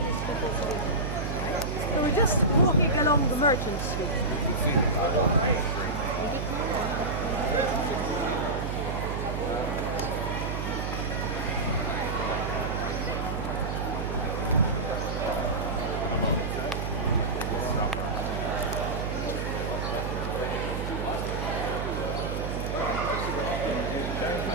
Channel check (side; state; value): right; noise; hum, 3 dB below the sound